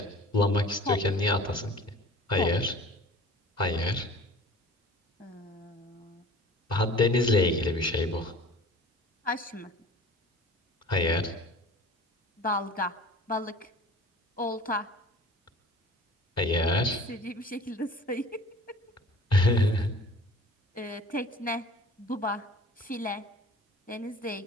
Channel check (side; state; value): both; normal; correlation 0.43